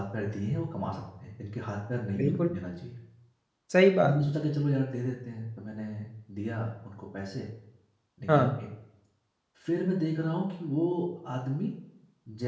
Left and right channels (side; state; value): both; identical; correlation 1.00